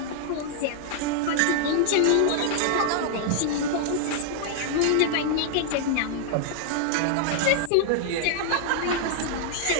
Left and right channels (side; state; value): both; different; correlation -0.01